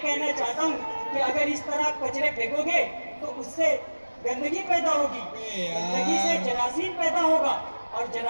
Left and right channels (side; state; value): both; inverted; correlation -1.00